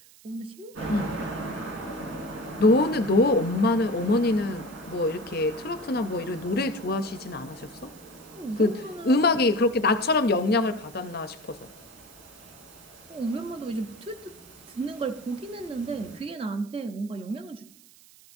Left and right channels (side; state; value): right; noise; hiss, 24 dB below the sound